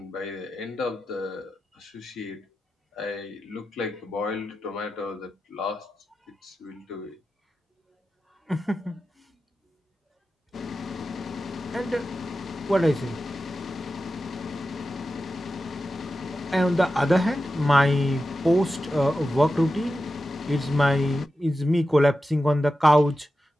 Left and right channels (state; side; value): normal; both; correlation 0.92